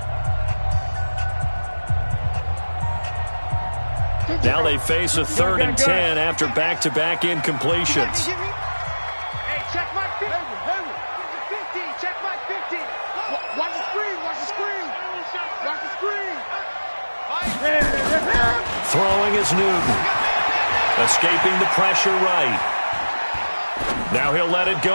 Now they face a 3rd and 10 after back-to-back incompletions. Hey, check my 50. Check my 50. Watch the screen. Throwing is Newton. Escaping the pressure right. Now he'll let it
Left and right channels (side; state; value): both; inverted; correlation -1.00